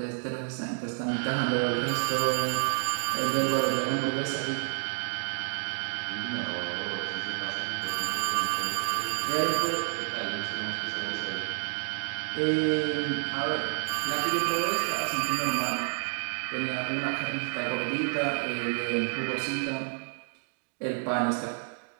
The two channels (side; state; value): left; silent; digital silence